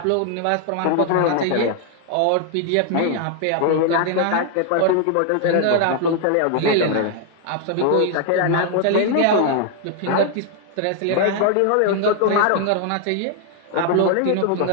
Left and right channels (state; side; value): different; both; correlation 0.00